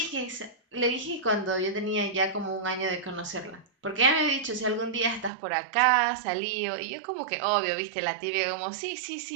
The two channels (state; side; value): drops out; left; at 5.3 s